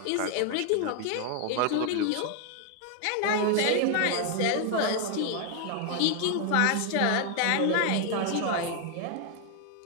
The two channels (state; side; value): different; both; correlation 0.00